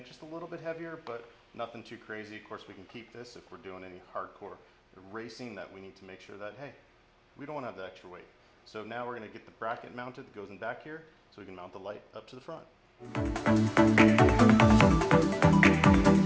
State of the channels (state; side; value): identical; both; correlation 1.00